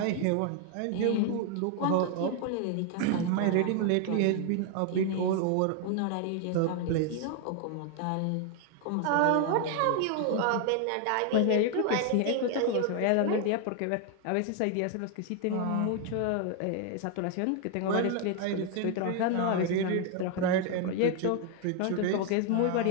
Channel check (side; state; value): both; different; correlation 0.00